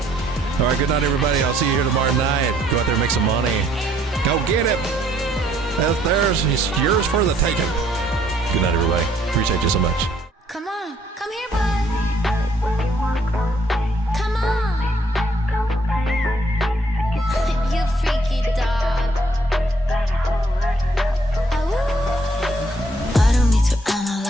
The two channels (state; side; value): normal; both; correlation 0.66